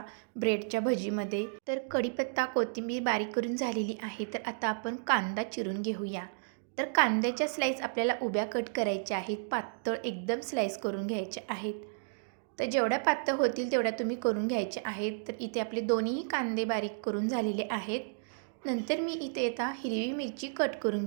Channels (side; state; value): left; silent; digital silence